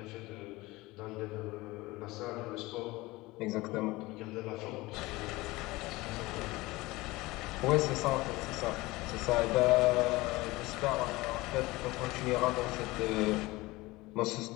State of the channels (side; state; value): right; quieter; 20.7 dB